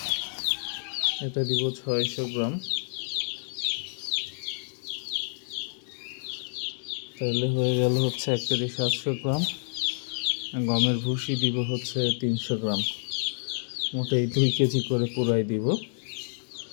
এটা দিব 600 গ্রাম। তাহলে হয়ে গেল হচ্ছে 1 কেজি 700 গ্রাম। গমের ভুসি দিব হচ্ছে 300 গ্রাম। মোটেই 2 কেজি করে পুরাই দিব।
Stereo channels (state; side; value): silent; right; digital silence